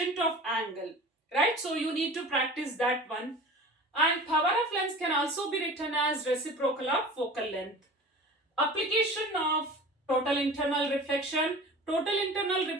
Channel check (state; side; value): normal; both; correlation 0.38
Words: of angle, right? So you need to practice that one. And power of lens can also be written as reciprocal of focal length. Application of total internal reflection. Total internal